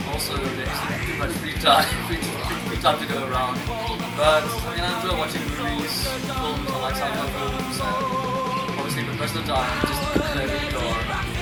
also there isn't too much free time to go around. But I mean, I enjoy watching movies, films, I like sci-fi films, and obviously, but most of the time, just play the guitar.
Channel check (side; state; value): both; identical; correlation 1.00